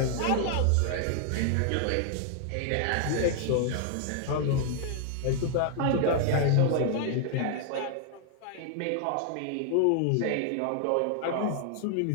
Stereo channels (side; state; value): both; different; correlation 0.00